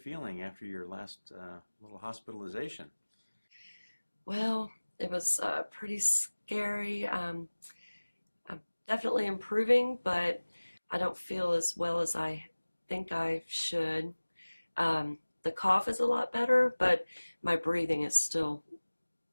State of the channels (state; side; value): inverted; both; correlation -1.00